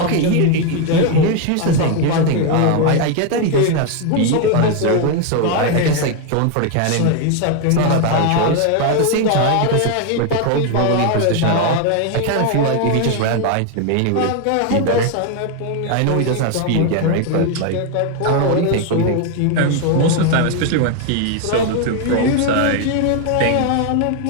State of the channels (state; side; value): different; both; correlation 0.01